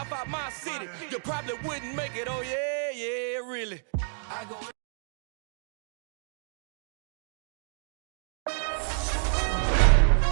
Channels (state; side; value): silent; left; digital silence